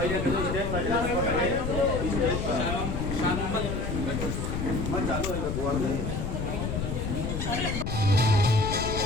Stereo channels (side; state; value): left; noise; rumble, 2 dB below the sound